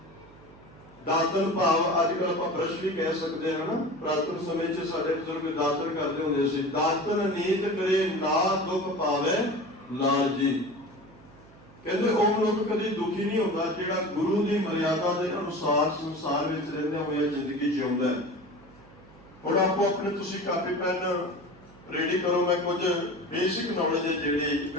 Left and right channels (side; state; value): right; noise; hum, 23 dB below the sound